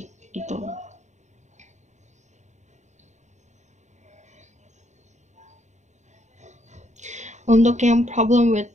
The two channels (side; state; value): left; late; 0.34 ms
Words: gitu. Untuk yang problem with